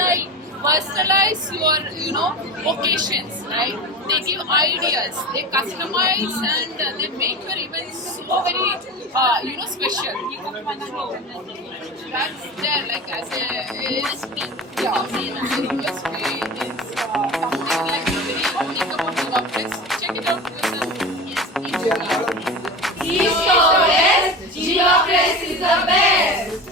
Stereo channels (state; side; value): normal; both; correlation 0.30